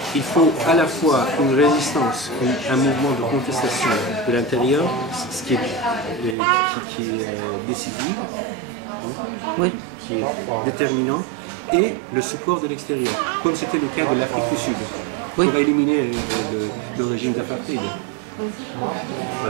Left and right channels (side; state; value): left; drops out; at 6.4 s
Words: Il faut à la fois une résistance, un mouvement de contestation de l'intérieur, ce qui est décisif, qui est déterminant, et le support de l'extérieur, comme c'était le cas de l'Afrique du Sud. Oui. pour éliminer le régime d'apartheid.